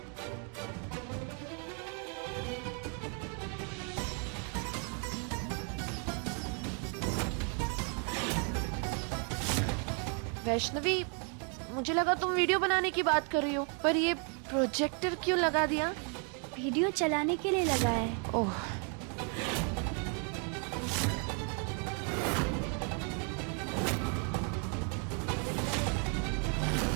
वैष्णवी, मुझे लगा तुम वीडियो बनाने की बात कर रही हो, पर ये प्रोजेक्टर क्यों लगा दिया? वीडियो चलाने के लिए लगाया है। ओह,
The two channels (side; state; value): left; quieter; 39.9 dB